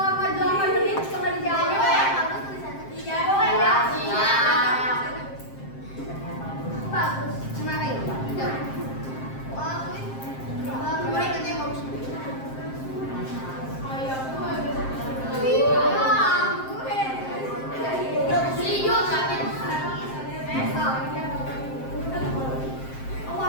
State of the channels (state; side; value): late; right; 7.6 ms